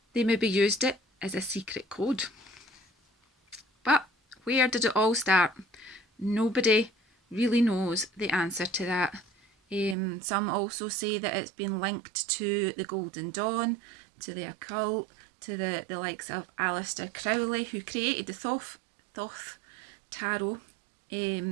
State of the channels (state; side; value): drops out; left; at 10.0 s